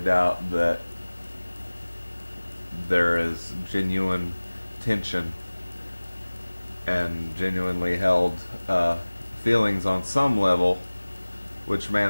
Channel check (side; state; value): both; inverted; correlation -1.00